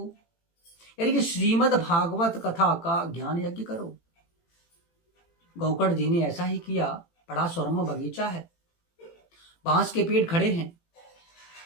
यानी कि श्रीमद् भागवत कथा का ज्ञान यज्ञ करो। गोकर्ण जी ने ऐसा ही किया। बड़ा सुरम्य बगीचा है, बांस के पेड़ खड़े हैं।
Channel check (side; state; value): right; late; 18 ms